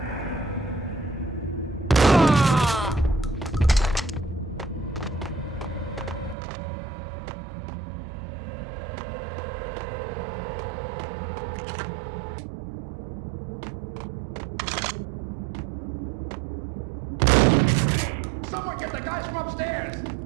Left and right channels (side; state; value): left; drops out; at 6.4 s